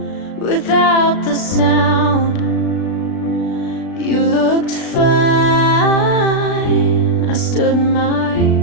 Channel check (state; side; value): late; right; 36 ms